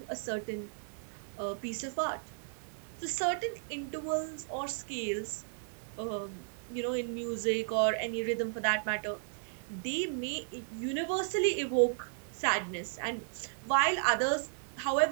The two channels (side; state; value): left; silent; digital silence